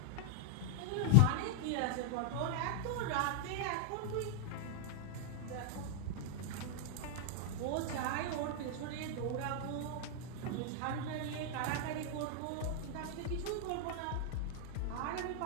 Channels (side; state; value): both; different; correlation -0.01